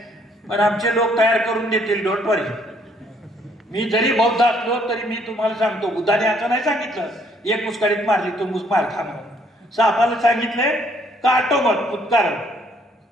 पण आमचे लोक तयार करून देतील, डोंट वरी. मी जरी बौद्ध असलो तरी मी तुम्हाला सांगतो, बुद्धाने असं नाही सांगितलं एक मुस्काडीत मारली तो मार खा म्हणून. सापाला सांगितलंय काटो मत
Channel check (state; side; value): normal; both; correlation 0.66